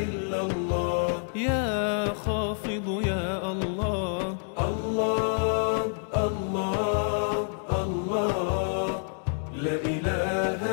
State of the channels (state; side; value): silent; right; digital silence